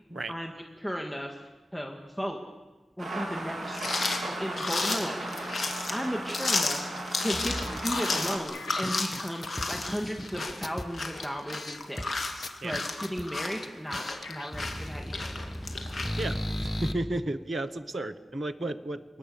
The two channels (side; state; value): both; normal; correlation 0.92